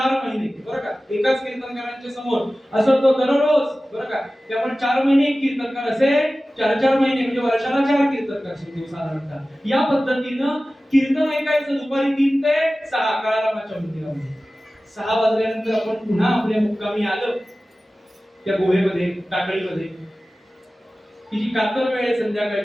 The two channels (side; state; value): both; normal; correlation 0.96